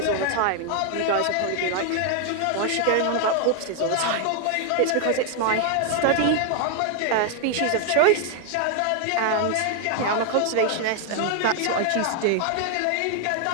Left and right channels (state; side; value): different; both; correlation 0.00